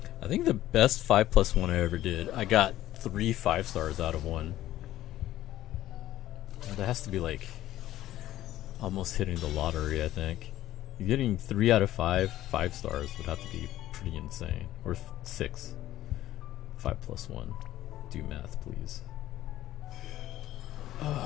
I think the best 5+1 I ever did, I got 3 5-stars out of one. That has to be like almost hitting the lottery, I think. Getting 3 out of 5 5-stars would have to be pretty insane. Or 6. 5+1. Do math, please.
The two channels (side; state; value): right; quieter; 14.1 dB